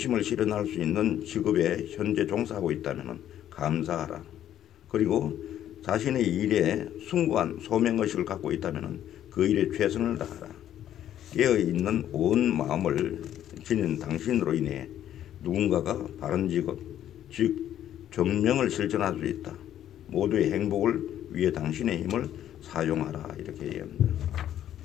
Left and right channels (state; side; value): quieter; right; 11.2 dB